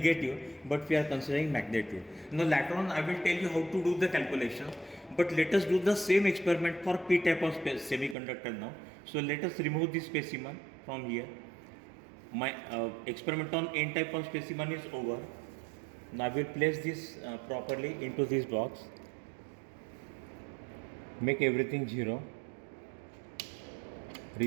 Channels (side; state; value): left; drops out; at 8.2 s